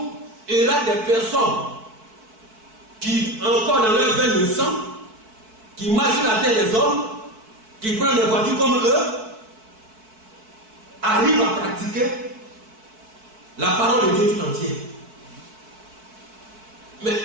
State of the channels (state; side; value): late; left; 4.6 ms